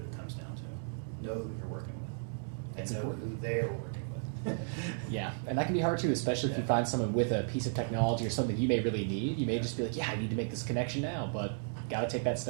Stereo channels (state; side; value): silent; left; digital silence